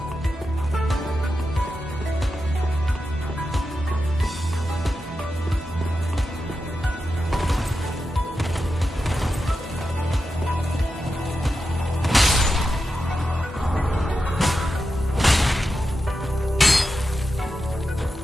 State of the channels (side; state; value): both; normal; correlation 0.89